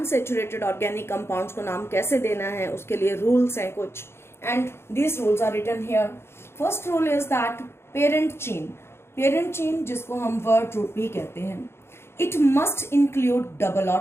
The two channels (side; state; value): right; late; 0.12 ms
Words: organic compounds को नाम कैसे देना है उसके लिए rules हैं कुछ, and these rules are written here. First rule is that parent chain जिसको हम word root भी कहते हैं, it must include double